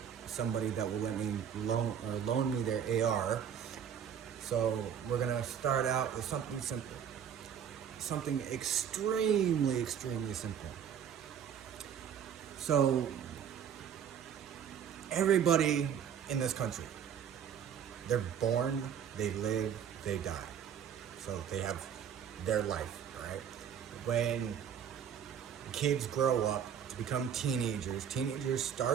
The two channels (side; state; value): left; quieter; 8.5 dB